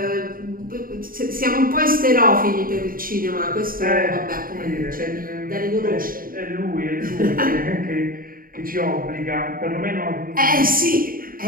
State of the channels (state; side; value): late; left; 0.41 ms